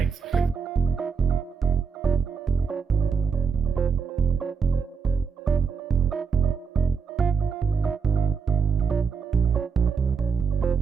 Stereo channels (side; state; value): left; quieter; 5.8 dB